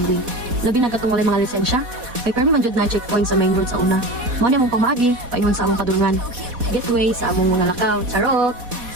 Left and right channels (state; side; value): late; left; 4.1 ms